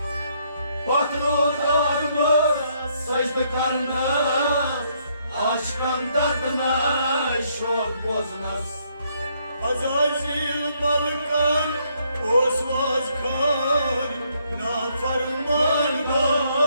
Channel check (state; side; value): inverted; both; correlation -0.71